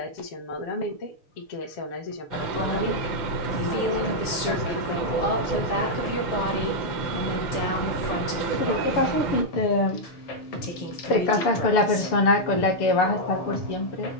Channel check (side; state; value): right; late; 6.8 ms